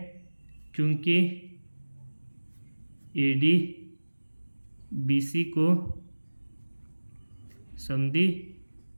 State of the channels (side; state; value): both; inverted; correlation -1.00